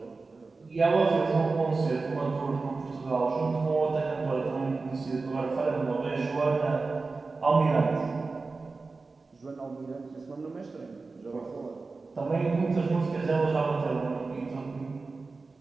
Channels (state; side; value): quieter; left; 3.9 dB